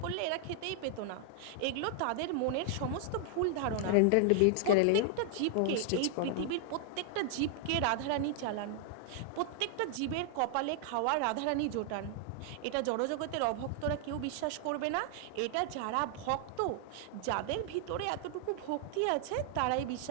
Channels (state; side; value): different; both; correlation 0.00